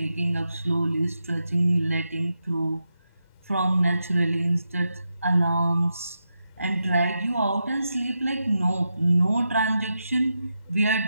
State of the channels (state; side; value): inverted; both; correlation -0.87